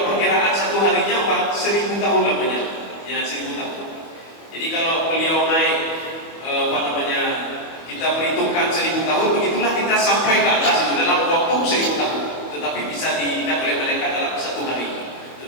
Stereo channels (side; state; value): right; late; 25 ms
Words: perkiraan satu harinya 1000 tahun namanya. Ya, 1000 tahun. Jadi kalau beliau naik kita perhitungkan 1000 tahun, begitulah kita sampai ke atas itu dalam waktu 1000 tahun. Tetapi bisa diingat oleh malaikat dalam satu hari.